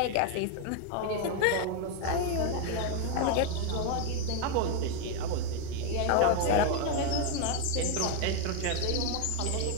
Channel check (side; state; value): both; different; correlation 0.01